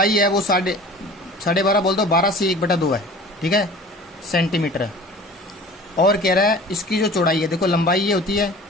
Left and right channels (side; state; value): both; normal; correlation 0.43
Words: है वो 12.5 बोल दो, 12 से 1/2 है। ठीक है, सेंटीमीटर है। और कह रहा है इसकी जो चौड़ाई है, देखो लंबाई ये होती है